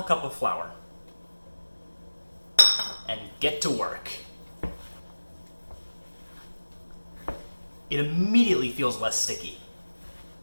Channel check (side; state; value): both; inverted; correlation -1.00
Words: cup of flour. And get to work. It immediately feels less sticky.